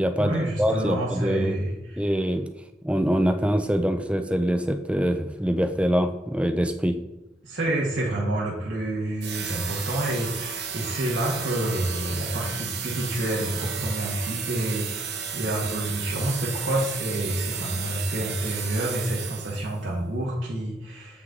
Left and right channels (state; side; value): normal; both; correlation 0.76